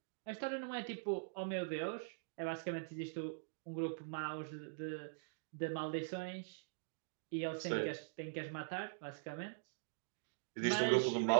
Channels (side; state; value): left; silent; digital silence